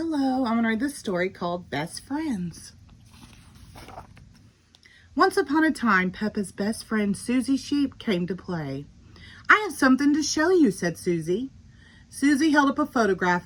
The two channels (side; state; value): both; identical; correlation 1.00